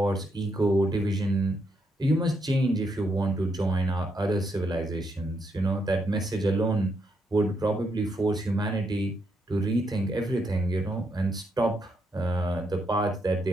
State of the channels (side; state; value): both; normal; correlation 0.78